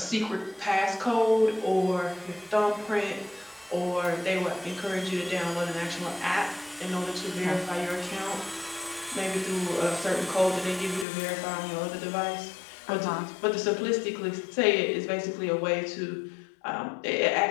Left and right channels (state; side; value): drops out; right; at 11.1 s